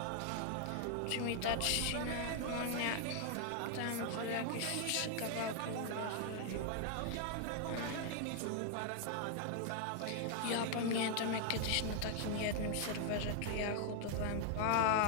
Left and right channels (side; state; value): both; different; correlation 0.00